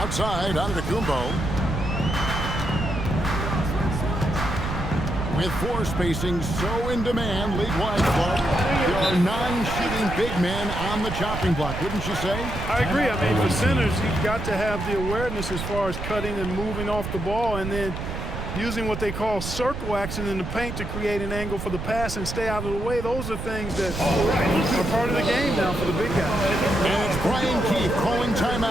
Antetokounmpo. With 4 spacing so in demand, league-wide, Clark, there are 9 shooting big men on the chopping block, wouldn't you say? I agree. I mean, for centers, you've got to have the awareness as far as cutting and moving off the ball, and then using what they call circle action in the paint to create an angle for the pass and stay out of the way. Those are things that are part of the game now for the big guys. And it's Brian Keefe calling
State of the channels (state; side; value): noise; right; rumble, 6 dB below the sound